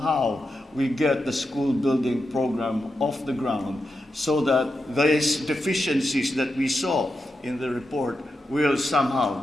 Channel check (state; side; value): normal; both; correlation 0.88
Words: how we get the school building program off the ground so that these deficiencies that we saw in the report will somehow